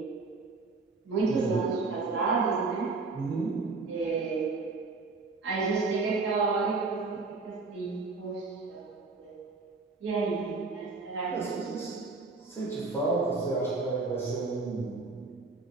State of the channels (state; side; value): quieter; left; 3.9 dB